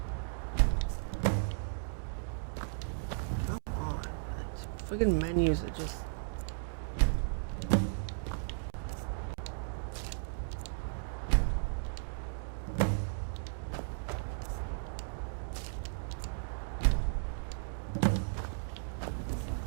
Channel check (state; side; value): silent; left; digital silence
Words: Come on. Friggin' menus are just...